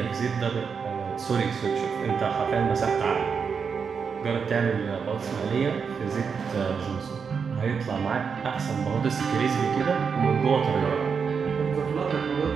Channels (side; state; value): left; quieter; 6.1 dB